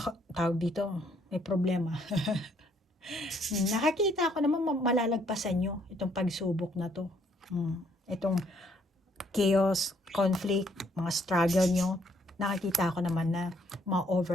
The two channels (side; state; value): both; normal; correlation 0.67